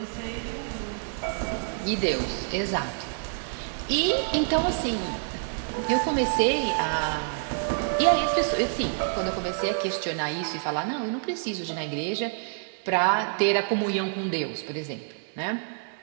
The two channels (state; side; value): silent; left; digital silence